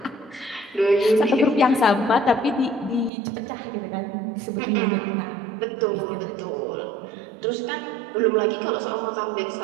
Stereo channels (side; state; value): left; drops out; at 3.1 s